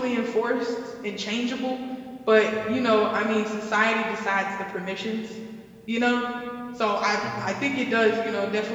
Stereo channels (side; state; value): both; identical; correlation 1.00